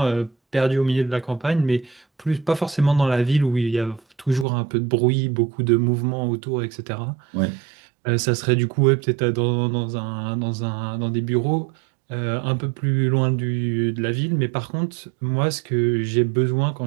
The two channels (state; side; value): drops out; left; at 4.5 s